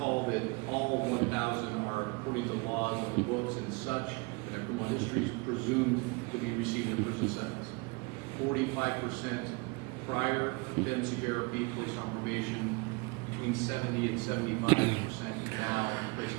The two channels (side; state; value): left; quieter; 27.4 dB